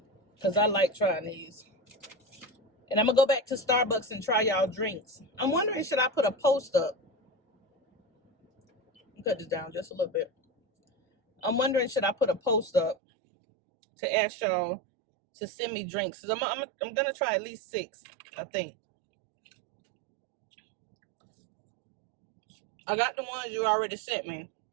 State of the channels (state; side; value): drops out; left; at 13.0 s